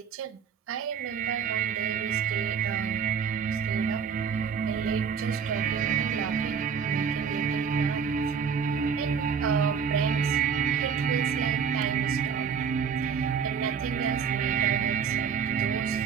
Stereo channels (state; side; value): quieter; left; 6.8 dB